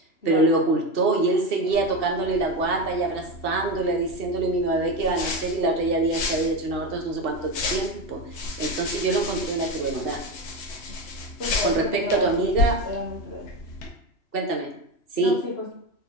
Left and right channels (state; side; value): late; right; 2.7 ms